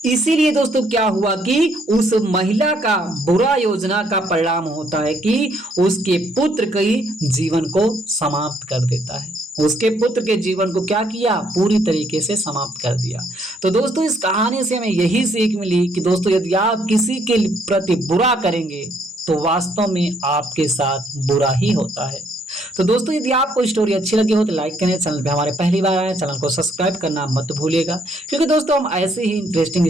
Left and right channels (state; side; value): normal; both; correlation 0.69